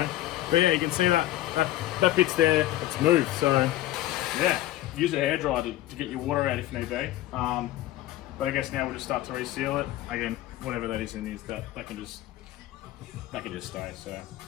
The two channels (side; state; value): right; quieter; 15.2 dB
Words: But yeah, you can see that bit's there, it's moved, so yeah, use a hairdryer to get your water out if need be. But I guess now we'll just start to reseal it. Again, whatever that is in this, that can just stay, so